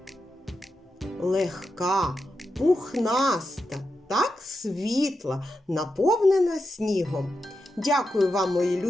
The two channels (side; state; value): both; normal; correlation 0.88